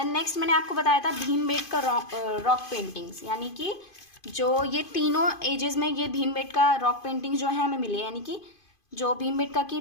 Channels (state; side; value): late; right; 2.5 ms